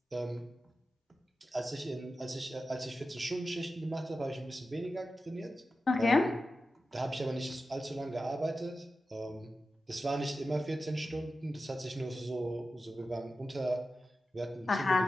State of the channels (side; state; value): both; normal; correlation 0.92